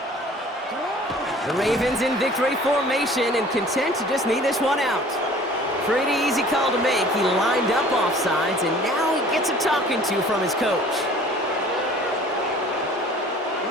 The Ravens in victory formation and content to just need this one out. Pretty easy call to make. He lined up offsides, and now he gets a talking to from his coach.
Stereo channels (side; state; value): both; normal; correlation 0.49